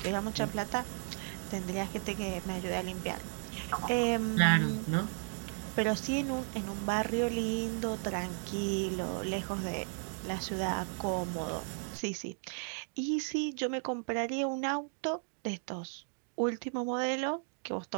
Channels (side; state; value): left; silent; 55 dB below the other